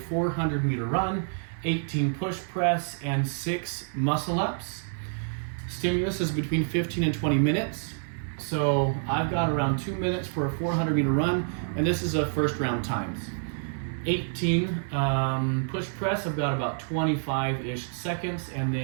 run, 18 push press, and 6 muscle ups. Stimulus is between 15 and 20 minutes. So I've got around 2 minutes for a 400-meter run, and this is a first round times. 18 push press, I've got about 25-ish seconds, and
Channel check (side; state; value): left; silent; 57 dB below the other